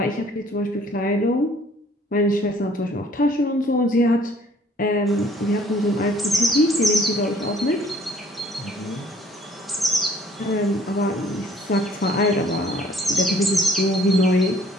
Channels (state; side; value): normal; both; correlation 0.57